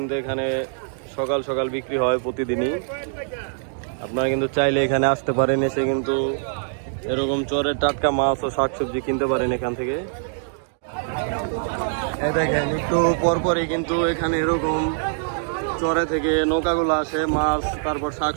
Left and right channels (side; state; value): left; silent; digital silence